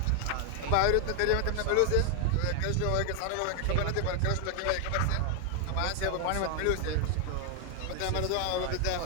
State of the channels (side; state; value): both; different; correlation 0.00